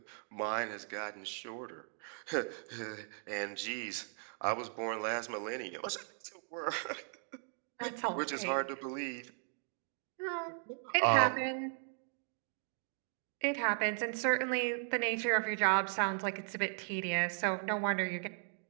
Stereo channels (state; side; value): silent; left; 53 dB below the other